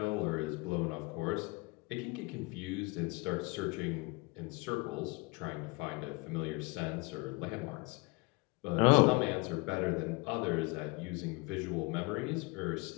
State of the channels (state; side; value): quieter; right; 26.7 dB